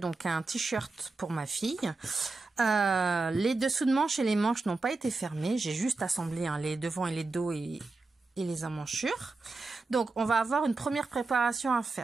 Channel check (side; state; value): left; quieter; 3.6 dB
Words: un t-shirt pour ma fille. Les dessous de manches et les manches n'ont pas été fermés. J'ai juste assemblé les devants et les dos et les emmanchures. Donc on va avoir une première préparation à